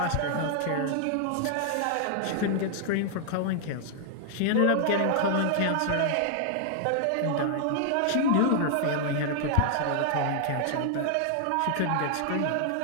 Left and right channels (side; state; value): both; different; correlation 0.00